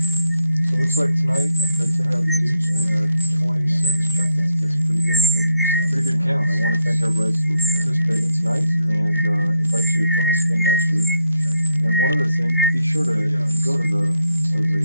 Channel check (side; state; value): both; inverted; correlation -0.73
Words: So it looks like tonight, after I take out the dudes, we had 26 check-ins. That's a pretty good count. I want to thank everybody for participating tonight and invite you to join us again next week. And one other thing, be sure to go to the